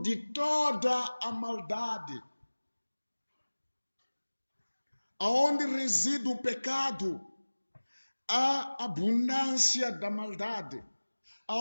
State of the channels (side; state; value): both; inverted; correlation -1.00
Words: de toda a maldade. Aonde reside o pecado, há abundância da maldade.